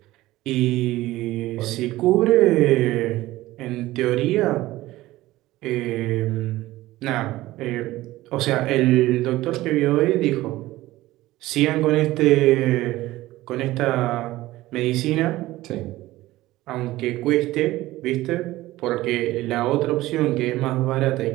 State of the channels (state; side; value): quieter; left; 17.1 dB